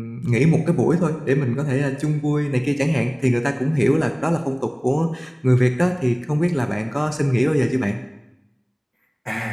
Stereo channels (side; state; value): both; identical; correlation 1.00